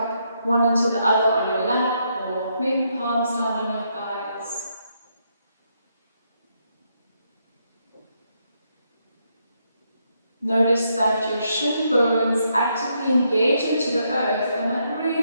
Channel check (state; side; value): inverted; both; correlation -0.77